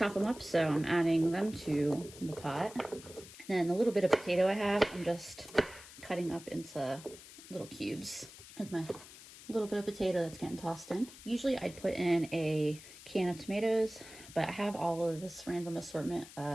them up, so I'm adding them to the pot. And then the little bit of potato I have, I'm just cutting up into little cubes with my little bit of potato that's getting tossed in. Usually I'd put in a can of tomatoes, but I have all of this random assortment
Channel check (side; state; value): left; noise; hiss, 17 dB below the sound